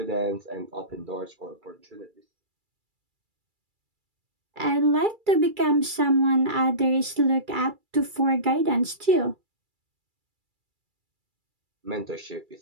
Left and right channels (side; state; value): left; late; 2.3 ms